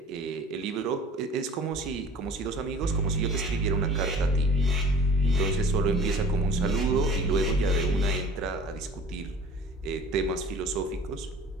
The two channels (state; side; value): normal; both; correlation 0.46